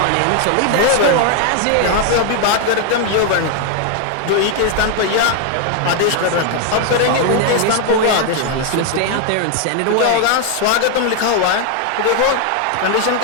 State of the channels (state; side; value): different; both; correlation 0.00